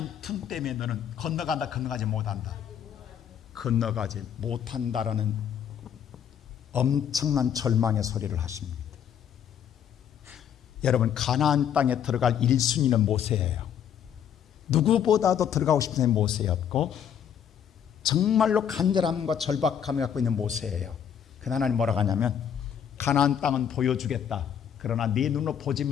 틈 때문에 너는 건너가지 못한다. 건너가지 못한다라는 엄청난 절망의 소리를 하십니다. 여러분, 가나안 땅에 들어갈 1순위는 모세예요. 누구보다도 들어가고 싶은 모세였고 정말로 간절함과 절박함을 갖고 있는 모세예요. 그 하나님 뭐라고 하냐면 가나안 땅은 보여주겠다. 그러나 네 눈으로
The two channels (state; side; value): quieter; right; 8.7 dB